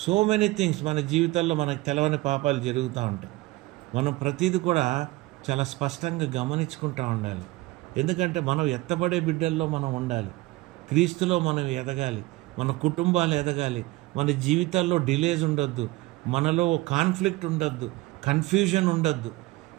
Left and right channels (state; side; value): quieter; left; 20.0 dB